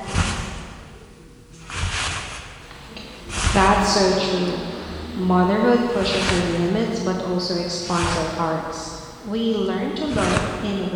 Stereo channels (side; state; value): both; identical; correlation 1.00